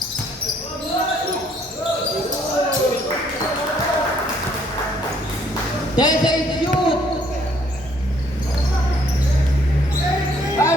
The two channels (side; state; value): both; normal; correlation 0.65